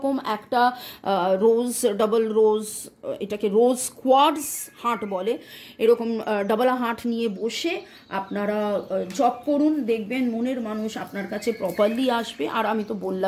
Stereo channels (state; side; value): identical; both; correlation 1.00